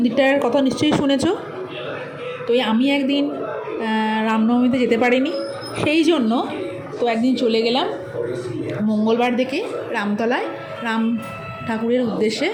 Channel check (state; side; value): identical; both; correlation 1.00